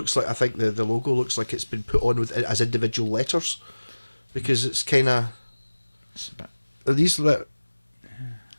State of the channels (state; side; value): inverted; both; correlation -1.00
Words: like, I think the logo looks like it's been put on with as individual letters, because it's kind of. It's a bit, Are these you know